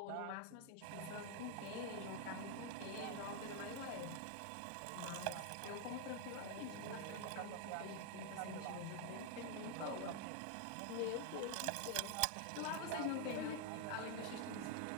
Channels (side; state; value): both; different; correlation 0.00